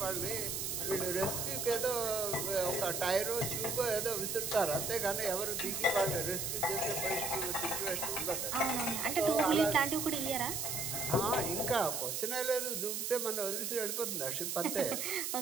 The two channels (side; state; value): right; noise; hiss, 2 dB below the sound